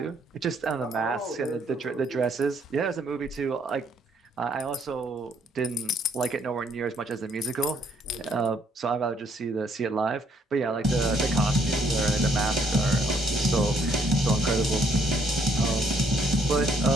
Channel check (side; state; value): both; normal; correlation 0.68